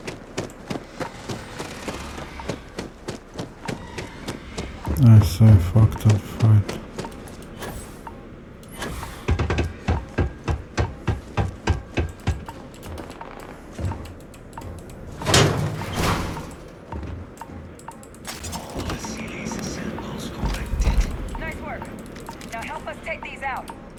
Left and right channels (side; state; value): both; identical; correlation 1.00